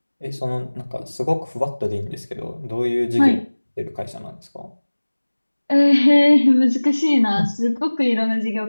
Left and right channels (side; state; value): both; inverted; correlation -1.00